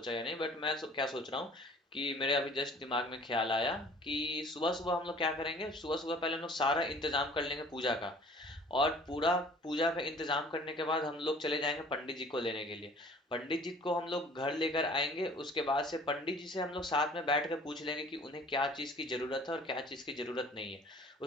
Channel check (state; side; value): normal; both; correlation 0.50